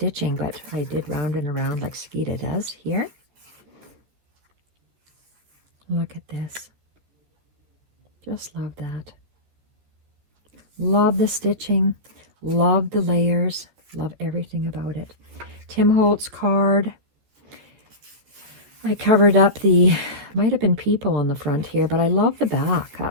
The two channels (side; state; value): left; late; 14 ms